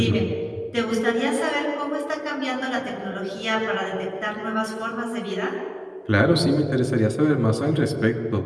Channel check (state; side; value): identical; both; correlation 1.00